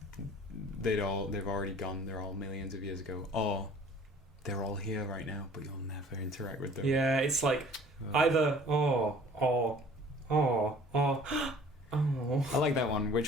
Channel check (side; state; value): both; normal; correlation 0.51